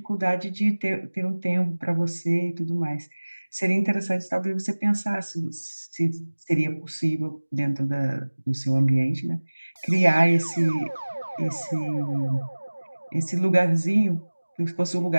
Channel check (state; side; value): inverted; both; correlation -1.00